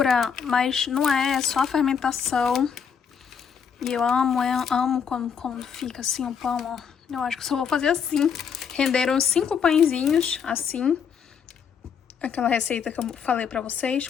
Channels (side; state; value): right; quieter; 7.0 dB